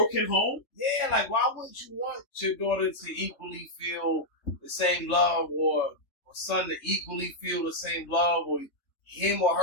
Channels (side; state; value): right; late; 3.3 ms